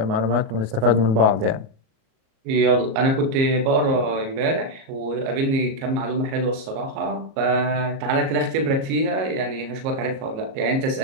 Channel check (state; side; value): late; left; 37 ms